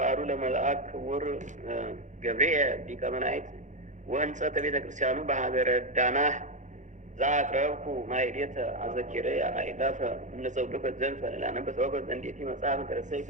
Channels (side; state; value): left; late; 0.35 ms